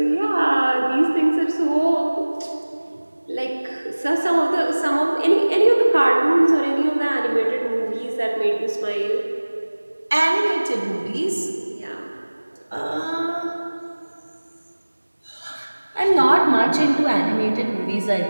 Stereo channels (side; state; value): both; inverted; correlation -1.00